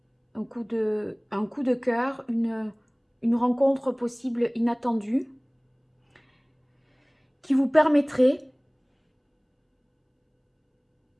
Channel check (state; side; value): identical; both; correlation 1.00